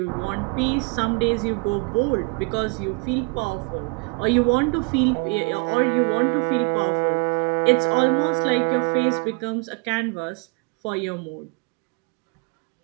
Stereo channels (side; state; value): left; quieter; 31.9 dB